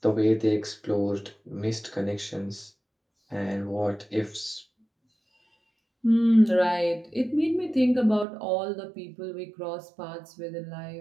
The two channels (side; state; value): left; drops out; at 8.2 s